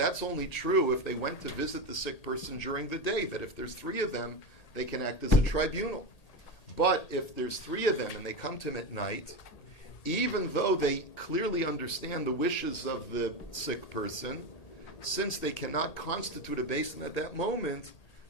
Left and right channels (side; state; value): right; late; 1.8 ms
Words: only true if they went to visit the sick person during the day, that if there's 3 of them, they can act as a tribunal. But if there's 3 of them and they come to him at night, even though they clearly understand the wishes of the sick person, since they cannot constitute a Beis Din at that moment,